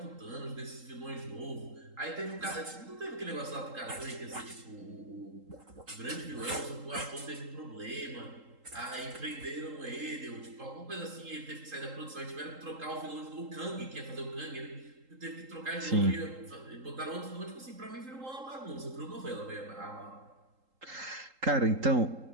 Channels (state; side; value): late; left; 3.8 ms